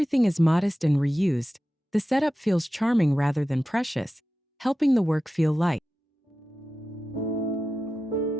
is modest and reused, the setup feels charming rather than precious, helping the work feel light.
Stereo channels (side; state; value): both; normal; correlation 0.93